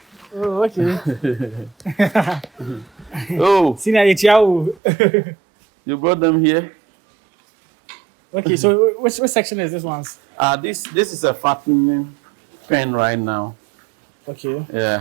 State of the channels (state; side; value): drops out; left; at 4.8 s